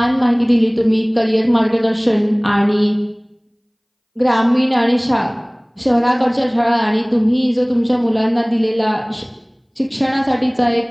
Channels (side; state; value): both; identical; correlation 1.00